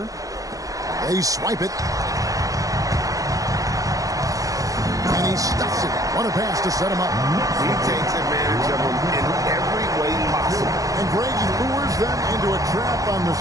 They swipe it. And he stuffs it. What a pass to set him up. He takes advantage of him in every way possible. And Grady lures them into a trap on the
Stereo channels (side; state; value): left; late; 0.17 ms